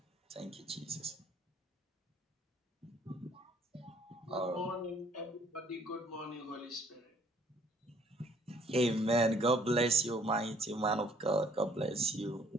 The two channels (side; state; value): both; normal; correlation 0.60